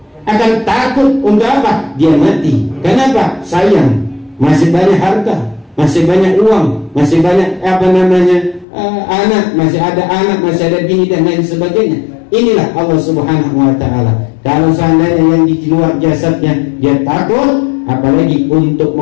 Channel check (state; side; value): drops out; right; at 8.7 s